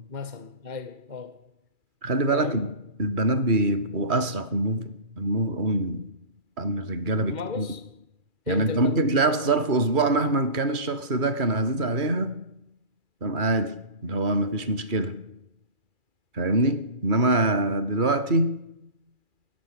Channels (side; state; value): left; late; 2.4 ms